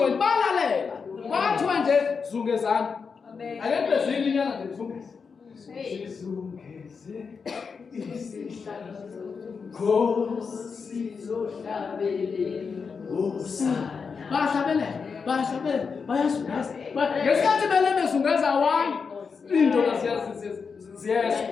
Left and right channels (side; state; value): right; quieter; 5.5 dB